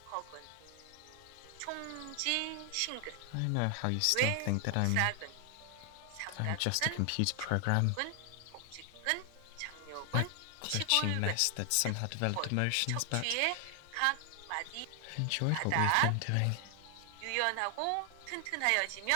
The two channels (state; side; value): different; both; correlation 0.00